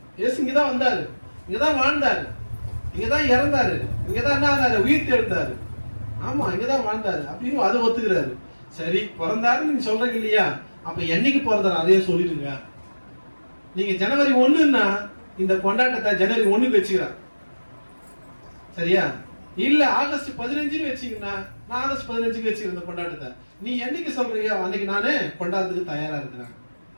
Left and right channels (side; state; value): both; inverted; correlation -1.00